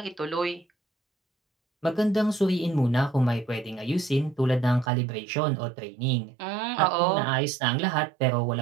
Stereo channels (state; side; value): drops out; left; at 4.9 s